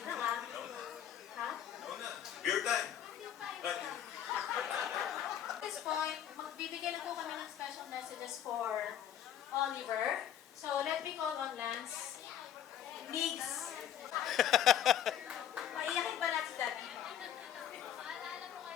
Beer time. At this point, magbibigay na po kami ng special messages for Oliver. So, let me call on Lance. Migs. Paiyakin ba natin si Daddy?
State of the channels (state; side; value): quieter; right; 10.3 dB